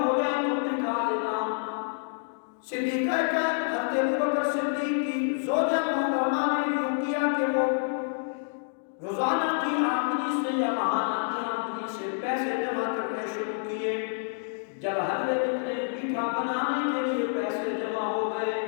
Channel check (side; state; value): right; silent; digital silence